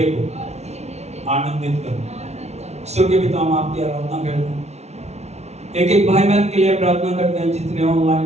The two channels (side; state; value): left; late; 0.32 ms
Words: को आनंदित करूं। स्वर्गीय पिता, हम आपकी आराधना करते हैं, एक एक भाई बहन के लिए प्रार्थना करते हैं जितने